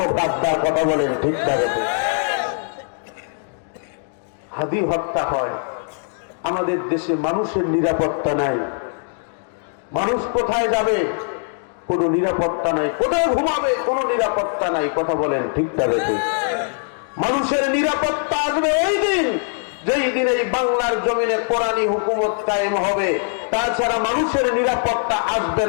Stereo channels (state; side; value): silent; right; 65 dB below the other